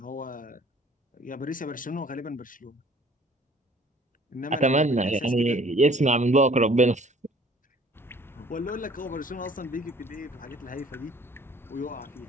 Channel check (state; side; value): normal; both; correlation 0.54